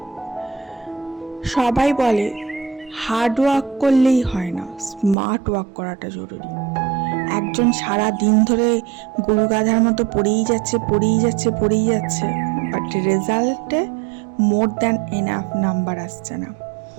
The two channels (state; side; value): drops out; left; at 5.2 s